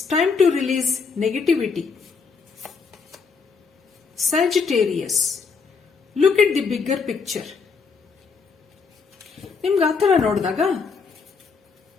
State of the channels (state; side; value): quieter; right; 5.2 dB